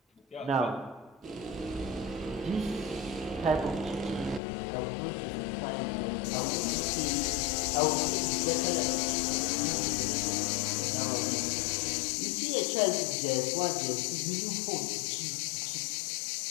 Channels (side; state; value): right; drops out; at 4.4 s